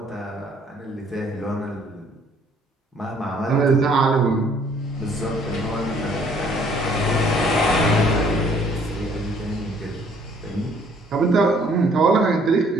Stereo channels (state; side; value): normal; both; correlation 0.60